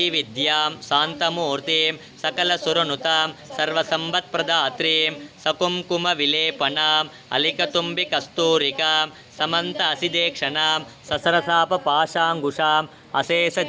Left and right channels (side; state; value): both; identical; correlation 1.00